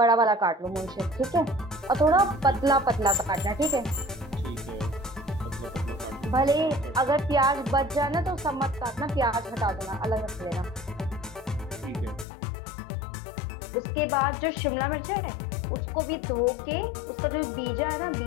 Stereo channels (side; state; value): right; drops out; at 12.2 s